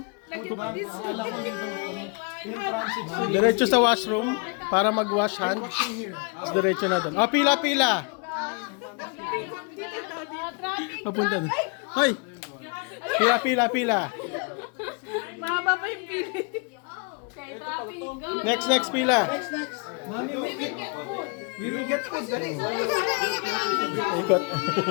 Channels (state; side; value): quieter; right; 34.1 dB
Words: Diretso sa washroom para mag-wash hand. Diretso na doon. Oh, pila, pila. Papunta doon. Hoy! Pila, pila, pila. Mahaba pa yung pili. Next pila. Mami, we will get food. Dali. Ikot.